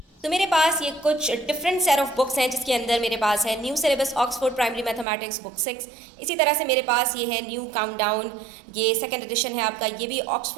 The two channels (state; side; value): drops out; left; at 5.1 s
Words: तो मेरे पास ये कुछ डिफरेंट सेट ऑफ बुक्स हैं जिसके अंदर मेरे पास है new syllabus Oxford primary mathematics book 6। इसी तरह से मेरे पास ये है न्यू काउंटडाउन, ये सेकंड एडिशन है आपका, ये भी